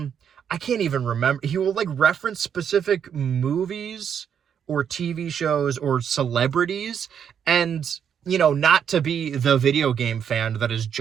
I can't even remember. He will, like, reference specific movies or TV shows or celebrities, and, you know, not to be the video game fan that is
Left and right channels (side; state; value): left; quieter; 8.1 dB